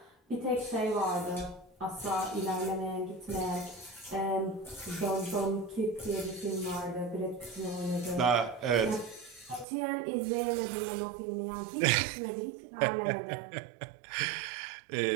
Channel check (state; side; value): drops out; left; at 9.7 s